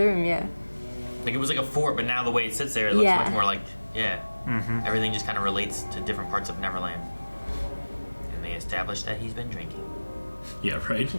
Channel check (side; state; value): both; inverted; correlation -1.00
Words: room. Yeah. Like it was like a fort, but now the way it sits there, it looks Yeah. much more like, everything just kind of relates to different parts of Neverland. And they established that he's been drinking. Yeah, right?